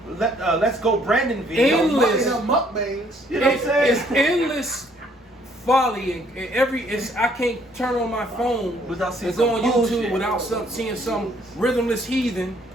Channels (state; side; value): normal; both; correlation 0.64